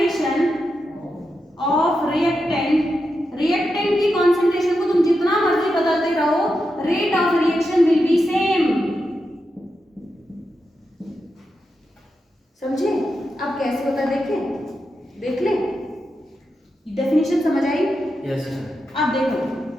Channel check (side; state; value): both; normal; correlation 0.87